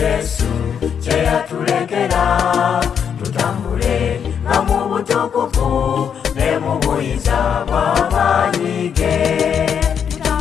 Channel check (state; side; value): quieter; right; 7.7 dB